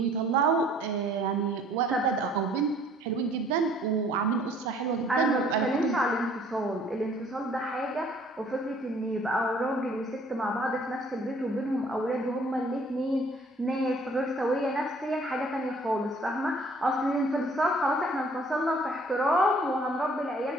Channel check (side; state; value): both; normal; correlation 0.57